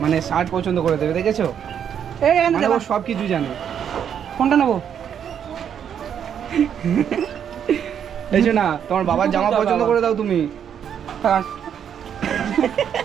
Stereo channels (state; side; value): quieter; left; 8.5 dB